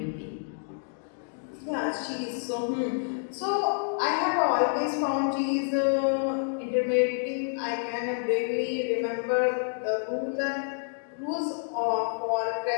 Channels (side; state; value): right; silent; digital silence